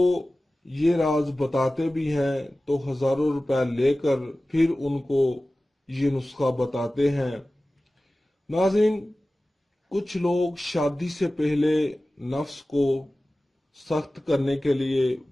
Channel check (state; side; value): normal; both; correlation 0.96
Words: ये राज बताते भी हैं तो हजारों रुपए लेकर फिर उनको ये नुस्खा बताते हैं। नाज़रीन, कुछ लोग शादी से पहले नफ्स को सख्त करने के लिए,